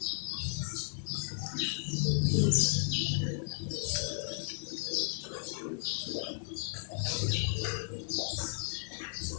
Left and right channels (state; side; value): silent; right; digital silence